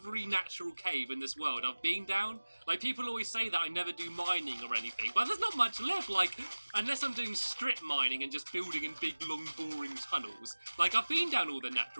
natural cave in this world I've been down. Like, people always say that I never do mining or anything, but there's not much left. Like, unless I'm doing strip mining and just building in big, long, boring tunnels. Like, I've been down all the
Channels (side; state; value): both; inverted; correlation -1.00